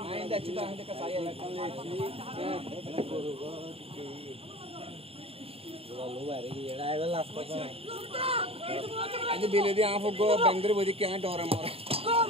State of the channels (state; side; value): late; left; 0.28 ms